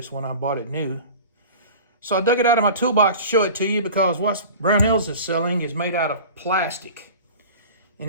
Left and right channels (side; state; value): both; inverted; correlation -0.38